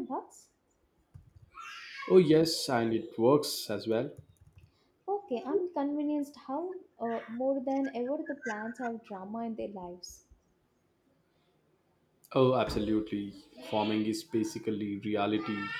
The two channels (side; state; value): both; identical; correlation 1.00